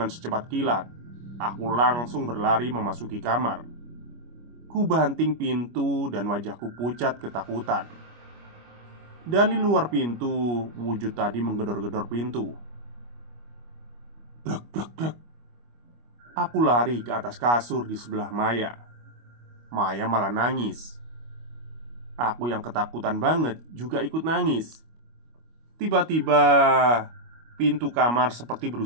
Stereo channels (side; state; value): left; late; 25 ms